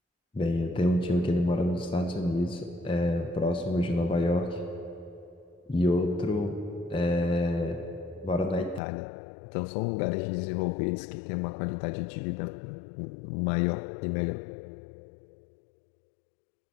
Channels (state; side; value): drops out; right; at 8.8 s